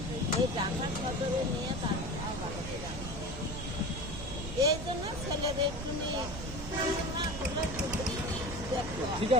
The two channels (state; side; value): noise; right; rumble, 8 dB below the sound